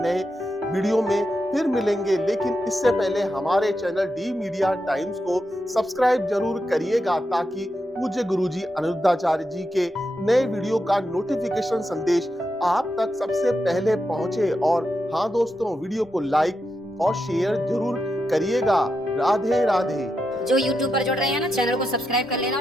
वीडियो में फिर मिलेंगे, लेकिन इससे पहले हमारे चैनल डी मीडिया टाइम्स को सब्सक्राइब जरूर करिएगा, ताकि पूज्य गुरुजी अनिरुद्धाचार्य जी के नए वीडियो का नोटिफिकेशन संदेश आप तक सबसे पहले पहुंचे। और हाँ दोस्तों, वीडियो को लाइक और शेयर जरूर करिएगा। राधे राधे। जो YouTube पर जुड़ रहे हैं ना, चैनल को सब्सक्राइब कर लेना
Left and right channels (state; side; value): normal; both; correlation 0.86